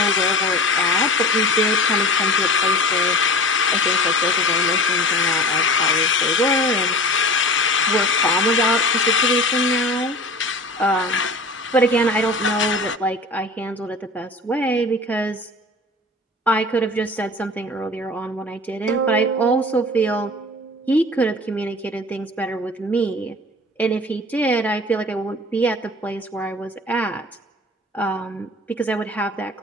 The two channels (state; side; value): normal; both; correlation 0.37